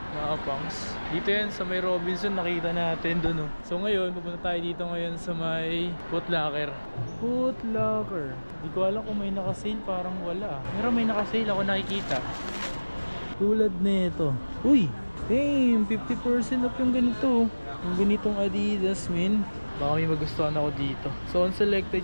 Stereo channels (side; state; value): both; inverted; correlation -1.00